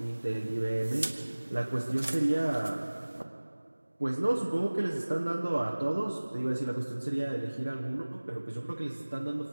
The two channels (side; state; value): both; inverted; correlation -1.00